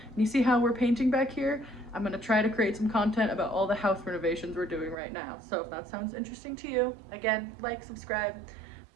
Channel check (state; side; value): drops out; left; at 5.0 s